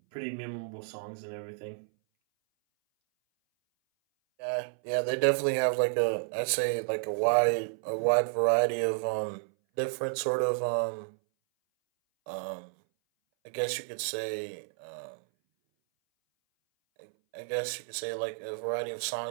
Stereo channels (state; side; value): silent; left; 57 dB below the other